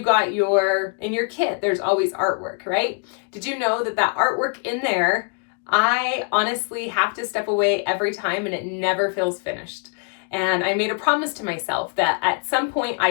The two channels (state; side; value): quieter; right; 36.1 dB